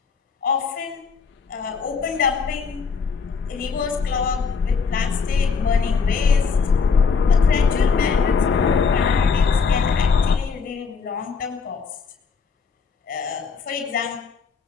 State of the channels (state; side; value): quieter; right; 5.4 dB